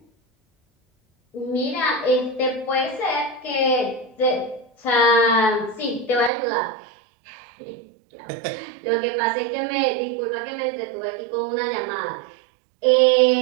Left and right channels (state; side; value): drops out; left; at 6.3 s